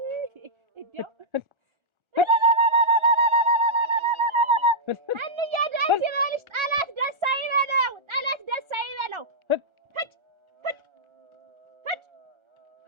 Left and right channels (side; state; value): left; late; 1.4 ms